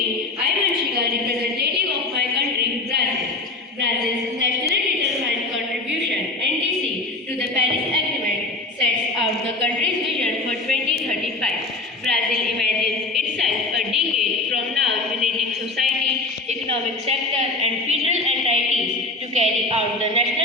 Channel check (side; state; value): right; quieter; 3.1 dB